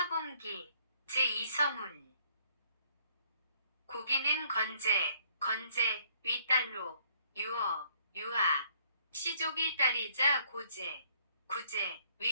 제2서문. 고기는 건제, 윗딸로, 유하, 시족의 딸이자 구제,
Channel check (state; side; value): inverted; both; correlation -0.64